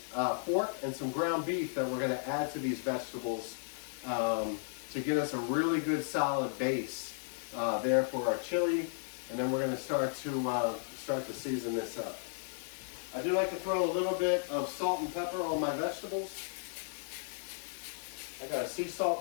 pork, and some ground beef that we're going to add to these vegetables to get us a really good solid base there for our chili. And then we're going to start to season this up. I do like to throw a little bit of salt and pepper on my vegetables. I got a sea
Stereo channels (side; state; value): right; silent; 55 dB below the other